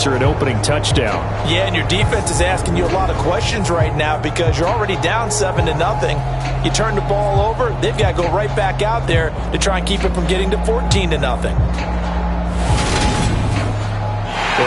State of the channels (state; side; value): identical; both; correlation 1.00